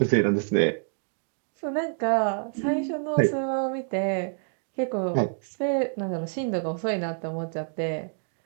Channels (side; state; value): left; silent; digital silence